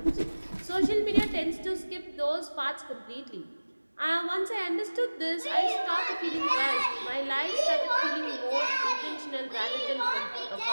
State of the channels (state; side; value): inverted; both; correlation -1.00